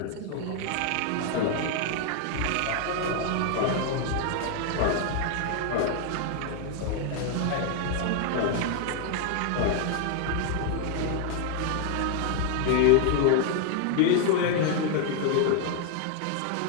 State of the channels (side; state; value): both; different; correlation 0.01